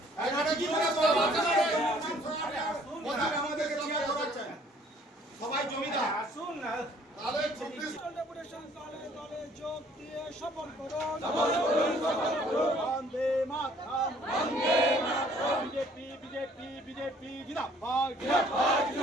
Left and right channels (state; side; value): normal; both; correlation 0.59